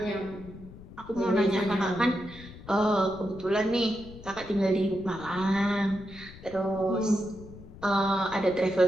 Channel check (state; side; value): noise; left; rumble, 17 dB below the sound